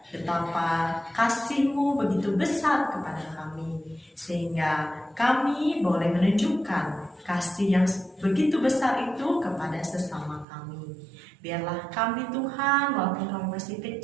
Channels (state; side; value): drops out; left; at 10.5 s